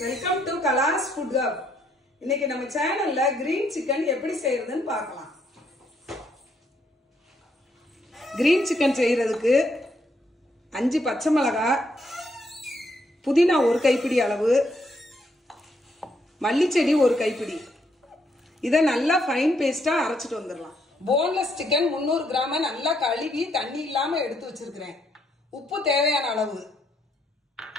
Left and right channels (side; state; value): both; normal; correlation 0.74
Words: welcome to Kala's Food Hub. இன்னைக்கு நம்ம சேனல்ல கிரீன் சிக்கன் எப்படி செய்யறதுன்னு பார்க்கலாம். கிரீன் சிக்கன் செய்யறதுக்கு 5 பச்சை மிளகாய், புதினா 1 கைப்பிடி அளவு, மல்லி செடி 1 கைப்பிடி. இத நல்லா ஃபைன் பேஸ்டா அரைச்சிட்டு வந்துடலாம். போன்லெஸ் சிக்கன் 300 கிராம் நல்லா கழுவி தண்ணி இல்லாம எடுத்து வச்சிருக்கிறேன். உப்பு தேவையான அளவு,